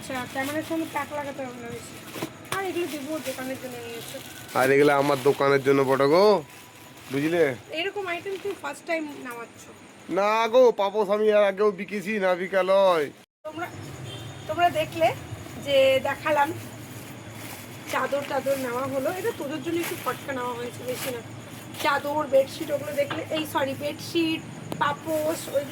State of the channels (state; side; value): identical; both; correlation 1.00